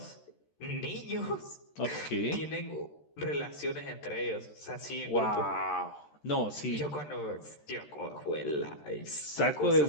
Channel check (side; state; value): right; late; 13 ms